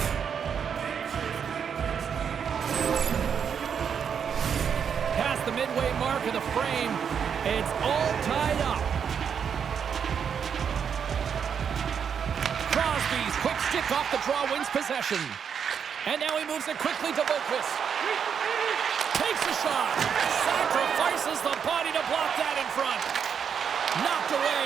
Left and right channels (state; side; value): quieter; left; 7.3 dB